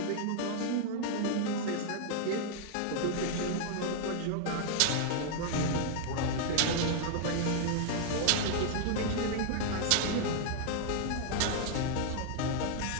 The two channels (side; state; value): both; different; correlation 0.00